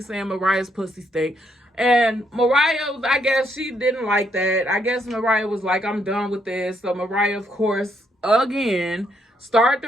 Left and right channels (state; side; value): normal; both; correlation 0.74